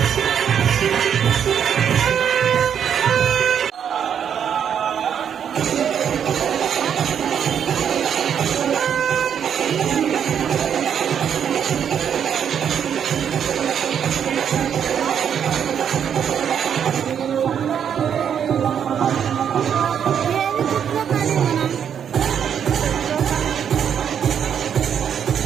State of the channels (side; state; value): left; quieter; 8.3 dB